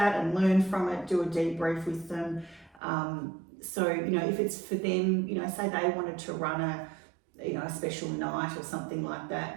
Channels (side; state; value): left; drops out; at 2.8 s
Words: and learn from it, do a debrief with them. So, if it's for them, say they wanted to run a special night or something like